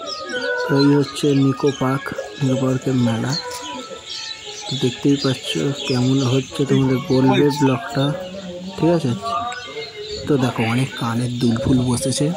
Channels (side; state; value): both; identical; correlation 1.00